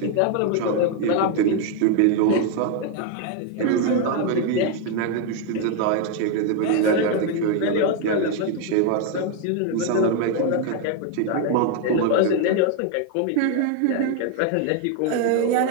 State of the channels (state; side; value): different; both; correlation 0.01